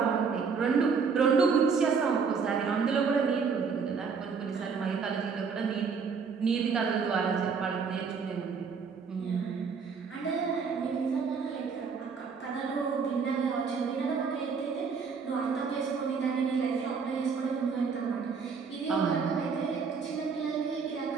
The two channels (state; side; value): quieter; left; 5.6 dB